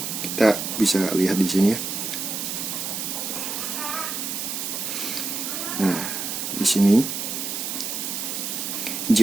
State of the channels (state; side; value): noise; right; hiss, 3 dB below the sound